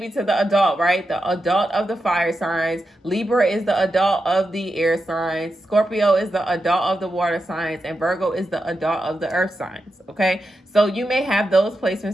to the adult, right? The adult of the fire signs. Libra is the adult of the air signs. Scorpio is the adult of the water signs, and Virgo is the adult of the earth signs. Okay, so you may have those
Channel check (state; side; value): normal; both; correlation 0.88